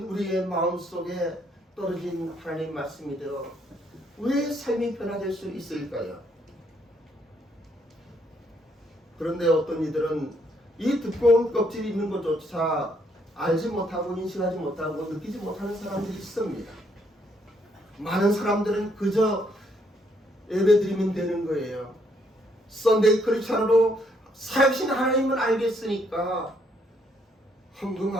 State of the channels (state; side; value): normal; both; correlation 0.71